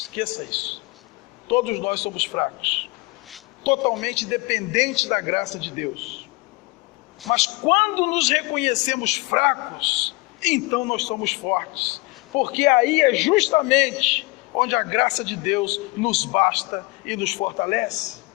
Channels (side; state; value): right; quieter; 24.6 dB